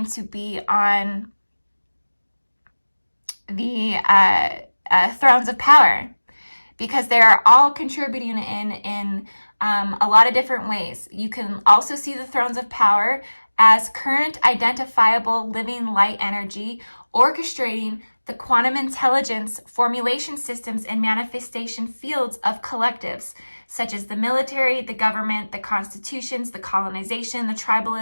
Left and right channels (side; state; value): both; inverted; correlation -1.00